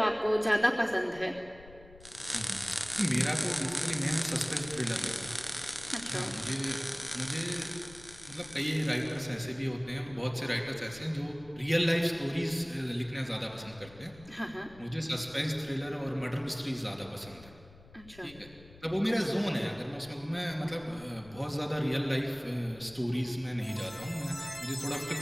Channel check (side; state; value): left; noise; rumble, 21 dB below the sound